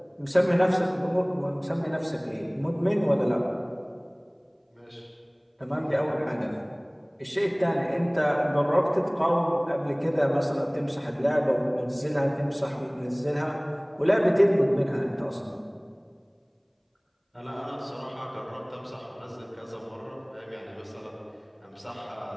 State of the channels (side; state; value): both; identical; correlation 1.00